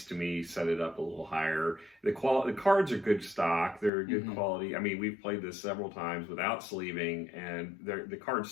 to me set it up a little higher. The cards are good stock. They're good quality. I mean, we've played this several times without sleeving, and the cards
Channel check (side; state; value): right; drops out; at 3.9 s